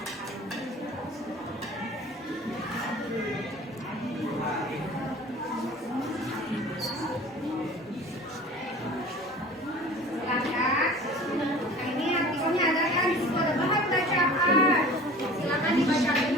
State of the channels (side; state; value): both; normal; correlation 0.42